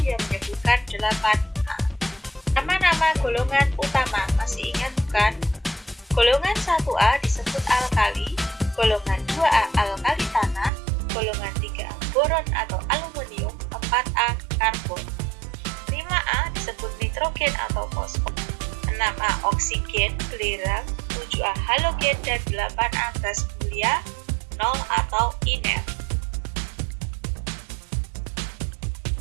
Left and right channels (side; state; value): left; drops out; at 10.7 s